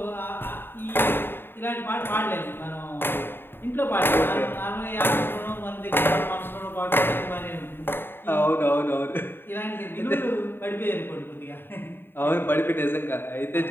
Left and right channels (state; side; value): late; right; 0.10 ms